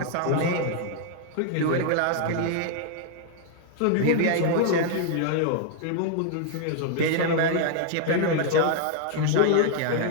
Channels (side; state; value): both; different; correlation -0.01